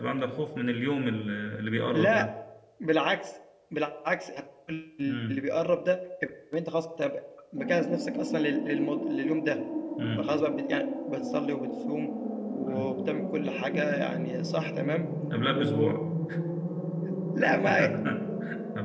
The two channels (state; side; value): identical; both; correlation 1.00